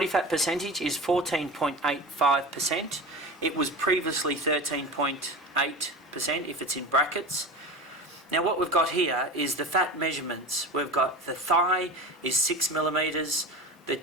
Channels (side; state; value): both; normal; correlation 0.30